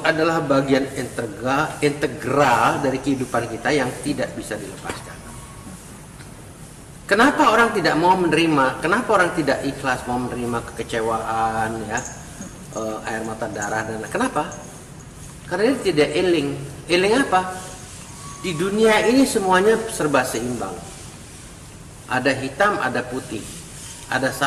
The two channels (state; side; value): identical; both; correlation 1.00